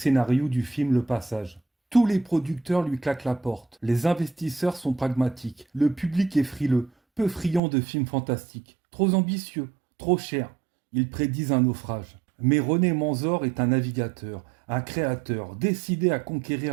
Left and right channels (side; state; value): left; drops out; at 7.6 s